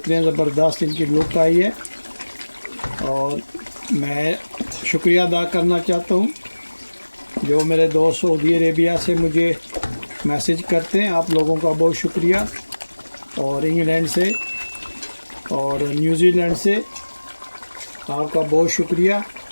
ज़बरदस्त इनकी लुक आई है। और मैं शुक्रिया अदा करना चाहता हूँ जो मेरे दोस्त सऊदी अरेबिया से मुझे मैसेज करते हैं, आप लोगों का बहुत शुक्रिया। और इंग्लैंड से और न्यूजीलैंड से आपका बहुत शुक्रिया।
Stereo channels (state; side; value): inverted; both; correlation -1.00